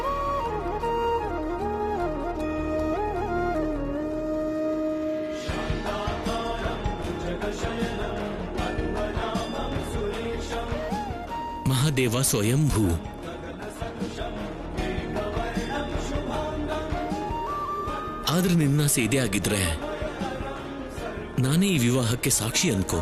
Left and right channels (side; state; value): both; identical; correlation 1.00